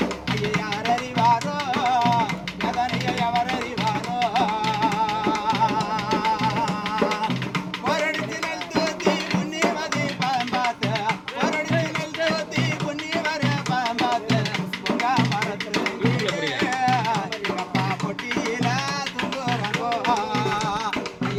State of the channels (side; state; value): both; identical; correlation 1.00